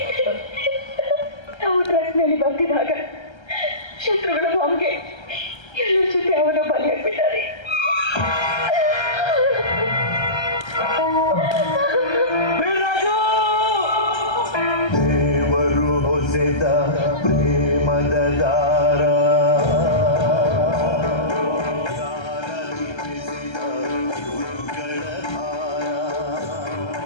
ನಾವು ಟ್ರಕ್ನಲ್ಲಿ ಬರ್ತಿದ್ದಾಗ ಶತ್ರುಗಳ ಬಾಂಬ್ಗೆ ಎಲ್ಲರ ಜೊತೆ ಅವನ ಬಲಿಯಾಗ್ಬಿಟ್ಟಾರೆ. ದೇವರು ಹೊಸೆದ ಪ್ರೇಮದ ದಾರ,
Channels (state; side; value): late; right; 1.3 ms